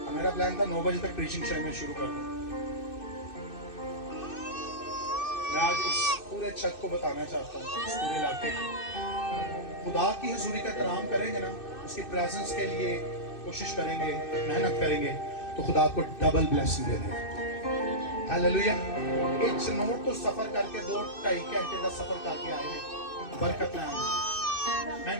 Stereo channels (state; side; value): late; right; 2.6 ms